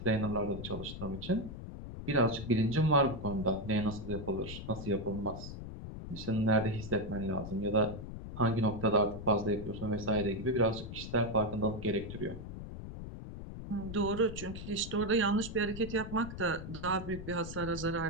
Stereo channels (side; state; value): left; noise; rumble, 9 dB below the sound